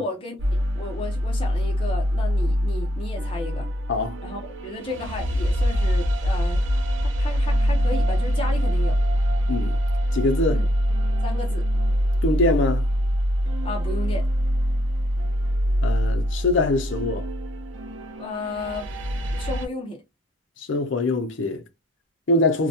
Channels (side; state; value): both; normal; correlation 0.71